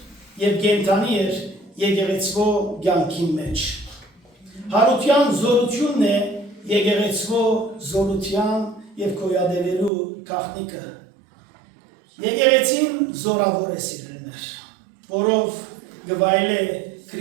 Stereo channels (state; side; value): drops out; left; at 9.9 s